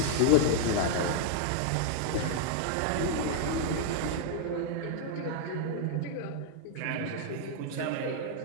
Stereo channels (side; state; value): both; different; correlation 0.00